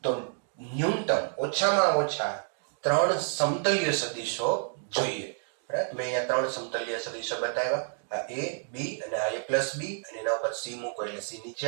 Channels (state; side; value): silent; left; digital silence